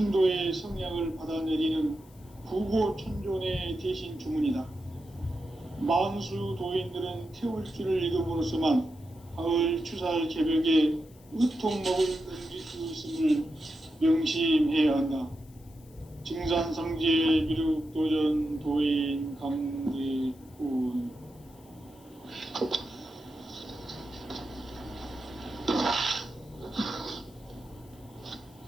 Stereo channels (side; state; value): left; noise; hiss, 28 dB below the sound